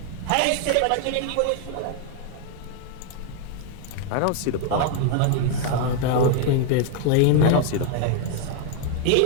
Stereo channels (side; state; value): both; different; correlation 0.00